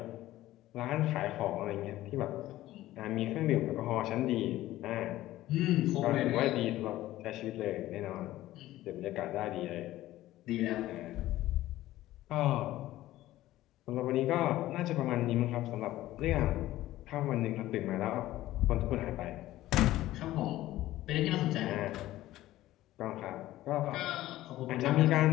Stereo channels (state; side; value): quieter; right; 15.4 dB